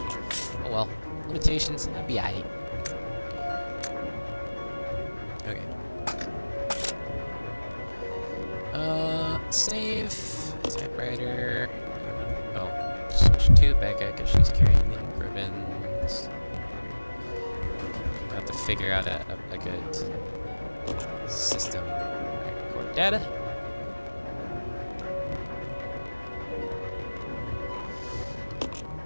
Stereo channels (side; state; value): both; inverted; correlation -1.00